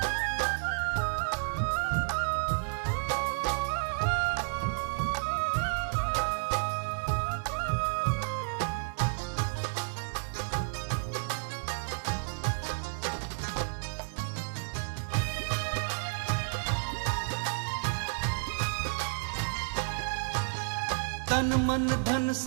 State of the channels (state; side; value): silent; left; digital silence